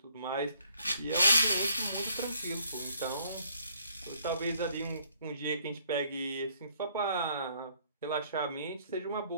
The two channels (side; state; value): both; inverted; correlation -0.65